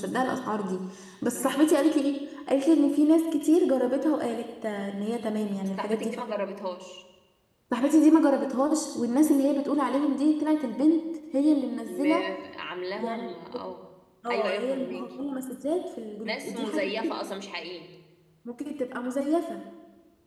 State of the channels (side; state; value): both; identical; correlation 1.00